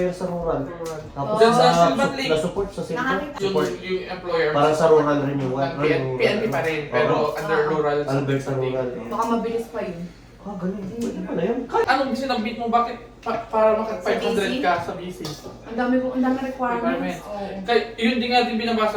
sa rural. Tapos Diyan sa Silvan Lake. na-support sa Silvan. Support. Yung employer. Para sa rural renewal. PNP pa rin, pero under rural. Albert sa rural. Baka mabilis pa yun. Ah, ganun. Pwede pala yun. Anong sinabit mo? Bakit para maka 500 ka sa BC? Ang dami requirements. Requirements. Oo. Kaya yun din nga din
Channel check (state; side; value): identical; both; correlation 1.00